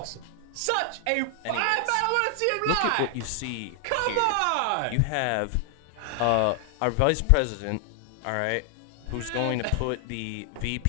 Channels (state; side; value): different; both; correlation 0.00